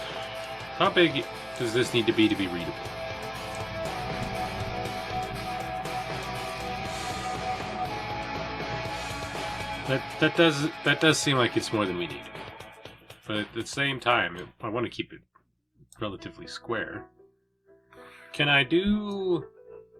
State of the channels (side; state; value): both; identical; correlation 1.00